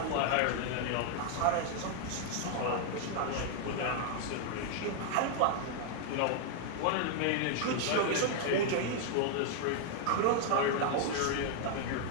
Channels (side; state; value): both; different; correlation 0.00